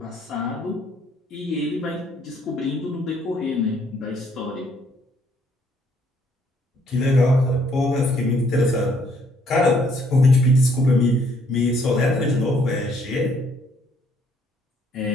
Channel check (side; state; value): both; normal; correlation 0.66